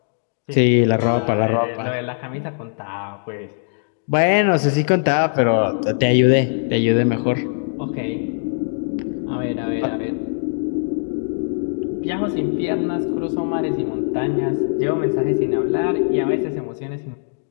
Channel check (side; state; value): right; silent; digital silence